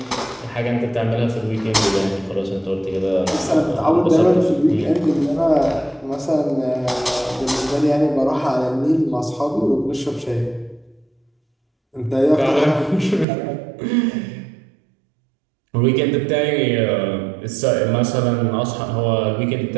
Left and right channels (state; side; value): drops out; left; at 13.2 s